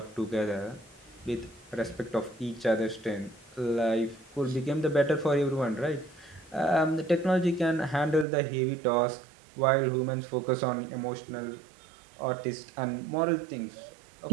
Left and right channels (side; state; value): left; drops out; at 8.2 s